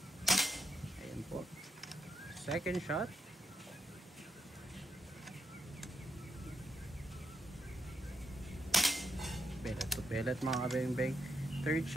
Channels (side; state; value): both; normal; correlation 0.77